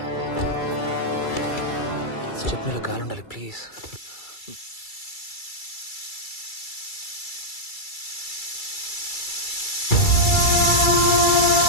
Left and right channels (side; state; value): right; late; 2.3 ms